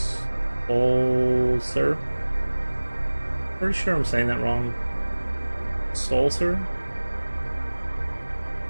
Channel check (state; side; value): inverted; both; correlation -1.00